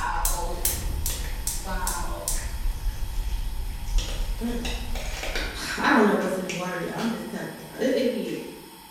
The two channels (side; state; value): both; identical; correlation 1.00